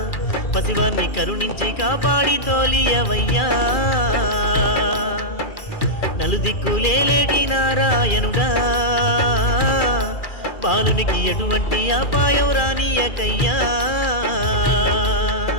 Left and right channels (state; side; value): late; right; 2.4 ms